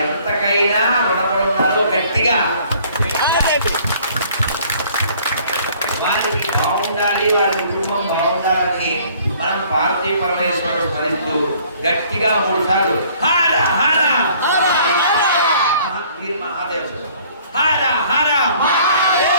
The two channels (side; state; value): both; inverted; correlation -0.56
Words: ఎంతకైనా రుణపడి ఉన్నారు. గట్టిగా వారికి బాగుండాలి, వారి కుటుంబం బాగుండాలని మనం పార్వతీ పరమేశ్వరుడు స్మరిస్తూ గట్టిగా 3 సార్లు హర హర మహాదేవ హర హర